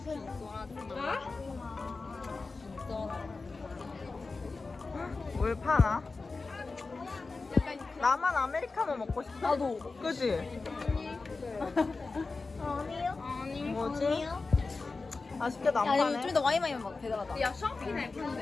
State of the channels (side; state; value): right; quieter; 3.9 dB